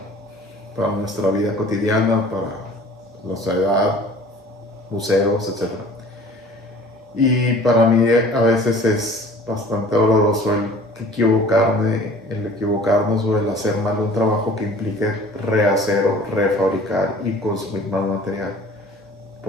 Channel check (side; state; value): both; normal; correlation 0.48